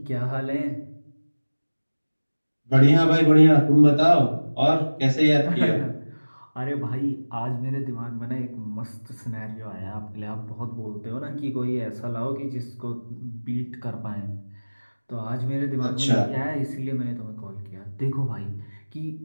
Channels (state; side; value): inverted; both; correlation -1.00